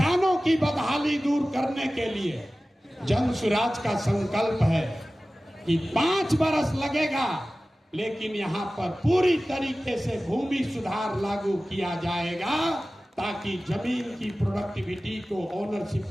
की बदहाली दूर करने के लिए जन सुराज का संकल्प है कि 5 बरस लगेगा, लेकिन यहाँ पर पूरी तरीके से भूमि सुधार लागू किया जाएगा, ताकि जमीन की प्रोडक्टिविटी को, ओनरशिप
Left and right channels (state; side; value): normal; both; correlation 0.96